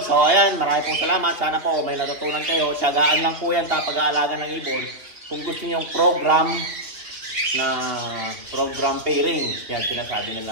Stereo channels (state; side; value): late; left; 2.9 ms